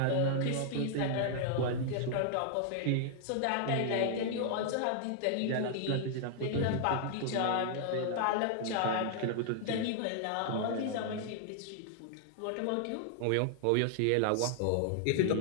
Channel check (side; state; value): both; different; correlation -0.01